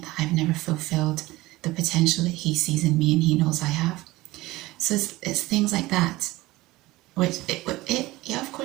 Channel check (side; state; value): left; quieter; 19.1 dB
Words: that I've never fulfilled the potential that he sees in me and he knows I have. So it's things like that, which yeah, of